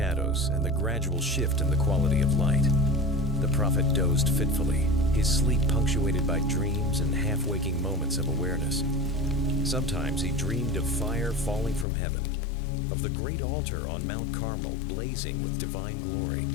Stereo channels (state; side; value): drops out; right; at 11.9 s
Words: and the gradual shift in the quality of light. The prophet dozed fitfully, his sleep punctuated by dreams and half-waking moments of awareness. Sometimes he dreamed of fire falling from heaven, of the great altar on Mount Carmel blazing with divine glory.